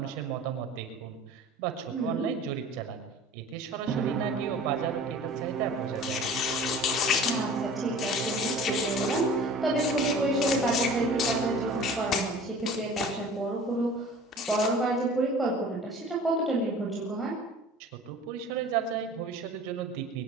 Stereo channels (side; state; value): both; normal; correlation 0.43